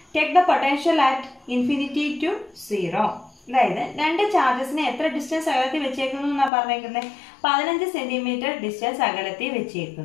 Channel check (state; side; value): drops out; right; at 6.5 s